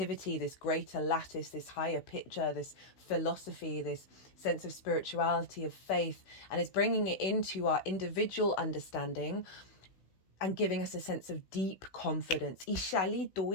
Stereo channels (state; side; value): late; right; 16 ms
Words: this greater lattice, this higher picture, this philosophy, this sense of spirituality, of faith, and it's bringing it into our individual understanding and giving us a sense of deep confidence. And